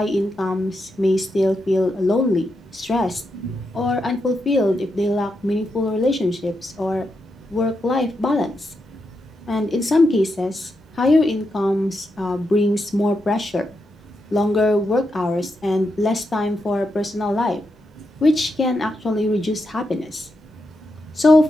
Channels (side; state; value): both; normal; correlation 0.84